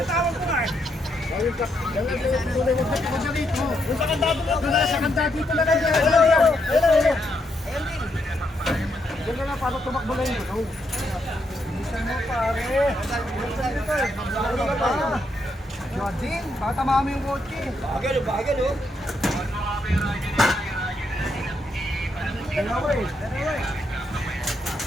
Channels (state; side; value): normal; both; correlation 0.78